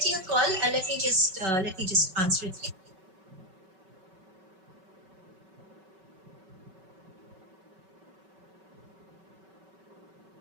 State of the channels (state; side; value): late; left; 5.3 ms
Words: a call. Let me just answer it.